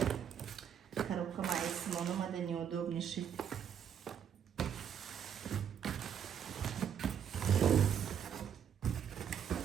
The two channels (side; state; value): left; quieter; 8.4 dB